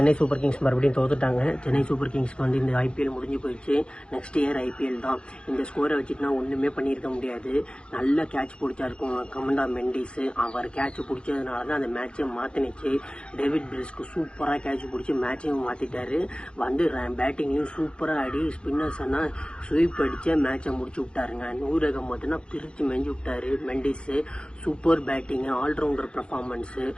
சூப்பர் கிங்ஸ் மறுபடியும் தோத்துட்டாங்க. சென்னை சூப்பர் கிங்ஸ்க்கு வந்து இந்த ஐபிஎல் முடிஞ்சு போயிடுச்சு. நெக்ஸ்ட் இயர் ஐபிஎல் தான். இந்த ஸ்கோரை வச்சுட்டுனா ஒன்றுமே பண்ணியிருக்க முடியாது. நல்ல கேட்ச் பிடிச்சாருக்கும் கமண்டா மெண்டிஸு. அவர் கேட்ச் பிடிச்சதுனால தான் அந்த மேட்சை மாற்றினுச்சு. டேவிட் பிரிஸ்க்கு சூப்பராக கேட்ச் பிடிச்சி மேட்சையும் மாற்றிட்டாரு. வந்து பேட்டிங்லையும் சூப்பராக ஆடி ஸ்பின்னர்ஸ் எல்லாம் ஸ்வீப் அடித்து மேட்சை முடிச்சு விட்டாருங்க. நூரகம் மட்டும்னா பிரித்து மெஞ்சு விட்டாரு Mendis. Super batting, allrounder performance,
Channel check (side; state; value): right; late; 0.056 ms